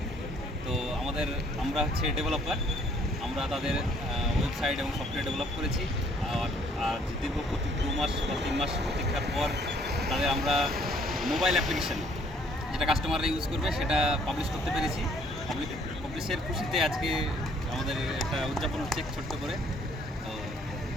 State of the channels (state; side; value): normal; both; correlation 0.62